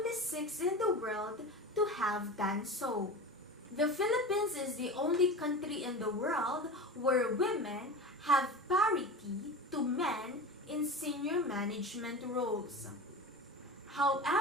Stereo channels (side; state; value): both; normal; correlation 0.30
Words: 6 in the world to have done so. The Philippines is the only country in the world where women have parity to men in senior management roles.